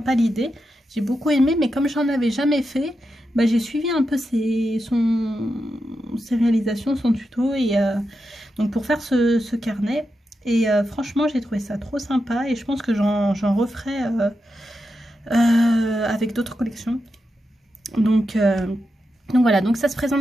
l'idée. J'ai beaucoup aimé, mais comme j'en avais jamais fait, bah, j'ai suivi un peu ses réalisations, son tuto. Et donc pour faire ce carnet. Et franchement, j'ai trouvé ça trop sympa et je pense que j'en referai avec d'autres collections. Donc voilà, donc ça se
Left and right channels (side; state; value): both; normal; correlation 0.87